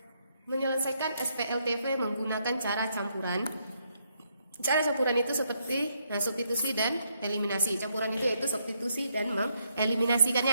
menyelesaikan SPLTV menggunakan cara campuran. Cara campuran itu seperti substitusi dan eliminasi. Campuran itu yaitu substitusi dan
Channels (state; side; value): inverted; both; correlation -0.76